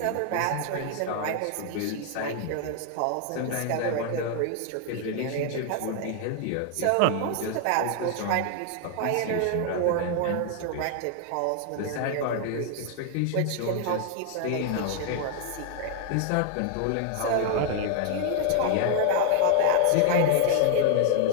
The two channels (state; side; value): different; both; correlation 0.00